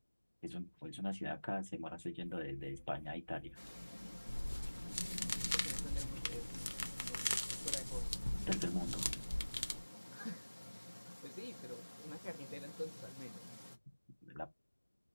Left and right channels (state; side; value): inverted; both; correlation -1.00